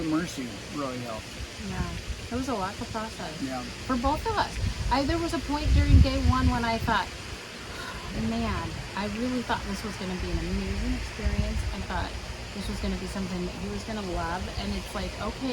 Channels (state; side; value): identical; both; correlation 1.00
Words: Mercy really helped. Yeah, it was a lot to process. Yeah. For both of us. There was a point during day one when I thought, man, I really thought this was going to be an amazing experience. I thought this was going to be something that he was going to love, and it's like,